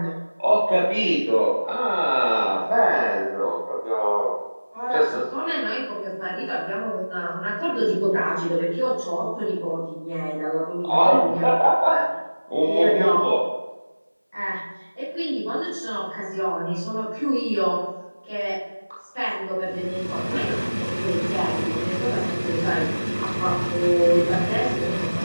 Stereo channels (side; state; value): both; inverted; correlation -1.00